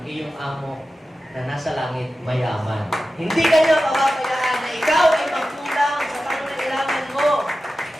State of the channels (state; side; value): normal; both; correlation 0.94